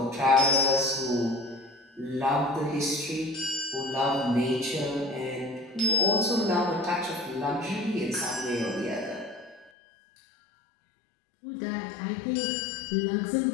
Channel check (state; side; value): drops out; right; at 9.7 s